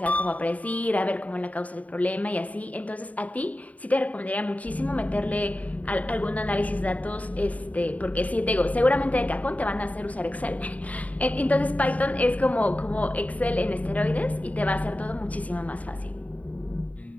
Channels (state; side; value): late; right; 0.071 ms